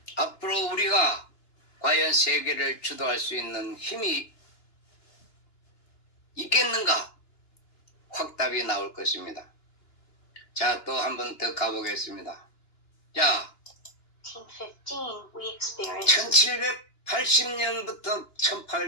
앞으로 우리가 과연 세계를 주도할 수 있는 힘이 있겠는가? 확답이 나올 것입니다. 자, 또 한 번 더 가보겠습니다. 자, 1915, we experienced 1780년부터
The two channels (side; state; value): right; late; 2.9 ms